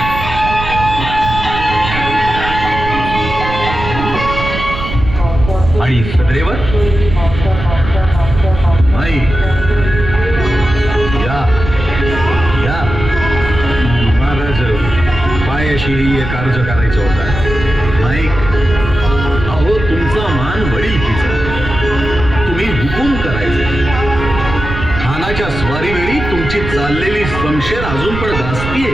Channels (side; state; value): right; noise; rumble, 7 dB below the sound